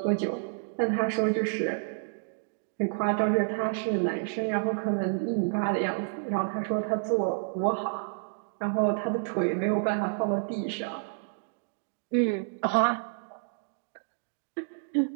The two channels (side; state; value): left; silent; digital silence